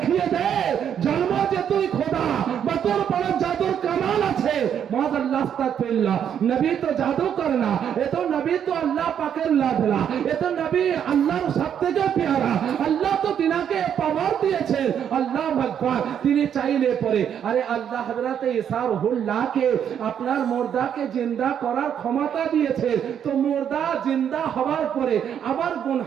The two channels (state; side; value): quieter; left; 8.8 dB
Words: দে, জন্ম যে তুই খোদা বা তোর বড় জাদুর কামাল আছে। মাদাল্লাহ আস্তাগফিরুল্লাহ। নবী তো জাদুকর না, এ তো নবী তো আল্লাহ পাকের লাডলা, এ তো নবী আল্লাহর সবথেকে প্যারা। আল্লাহ তো তিনাকে পাওয়ার দিয়েছে, আল্লাহ আকবার। তিনি চাইলে পরে, আরে আল্লাহ হযরত ঈসা রুহুল্লাহকে আপনার মুর্দাকে জিন্দা করার ক্ষমতা দিয়েছে, তো মুর্দা জিন্দা হওয়ার পরে আবার